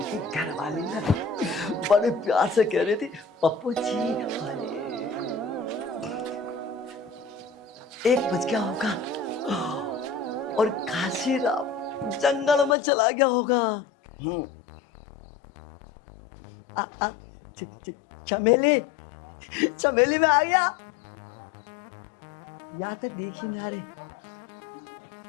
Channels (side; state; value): right; drops out; at 12.8 s